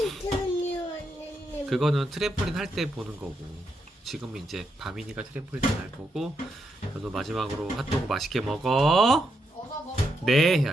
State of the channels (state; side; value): normal; both; correlation 0.81